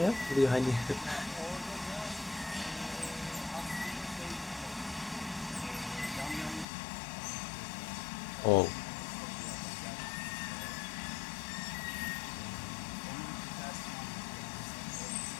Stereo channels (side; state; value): right; drops out; at 6.7 s